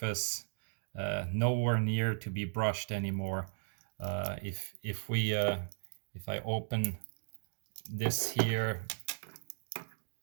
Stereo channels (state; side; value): silent; left; digital silence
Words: nowhere near to be brushed anymore. If I open this here,